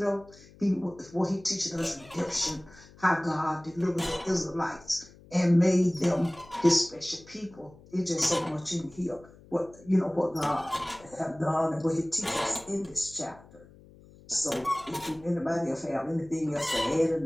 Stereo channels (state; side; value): noise; left; hum, 23 dB below the sound